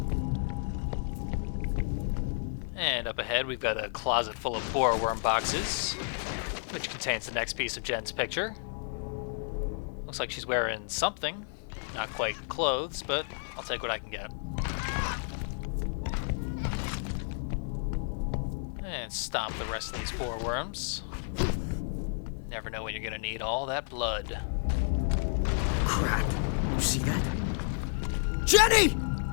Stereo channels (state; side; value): silent; right; digital silence